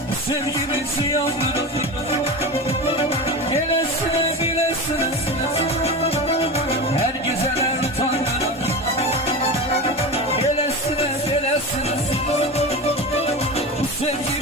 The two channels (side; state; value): both; normal; correlation 0.25